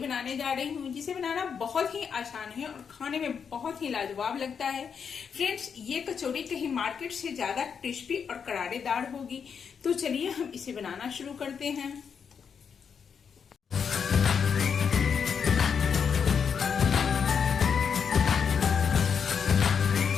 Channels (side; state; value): right; quieter; 6.7 dB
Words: जा रही हूँ, जिसे बनाना बहुत ही आसान है और खाने में बहुत ही लाजवाब लगता है। फ्रेंड्स, ये कचौड़ी कहीं मार्केट से ज्यादा क्रिस्पी और करारेदार होगी। तो चलिए हम इसे बनाना शुरू करते हैं।